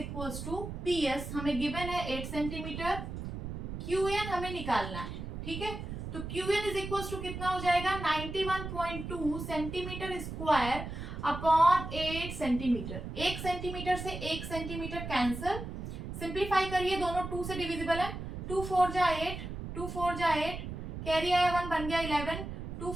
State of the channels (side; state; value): right; noise; rumble, 7 dB below the sound